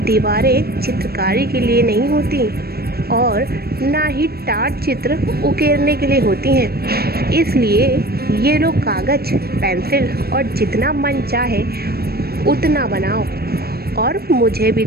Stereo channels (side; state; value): left; late; 0.46 ms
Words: चित्रकारी के लिए नहीं होती और ना ही टार चित्र उकेरने के लिए होती हैं। इसलिए ये लो कागज़ पेंसिल और जितना मन चाहे उतना बनाओ और मुझे भी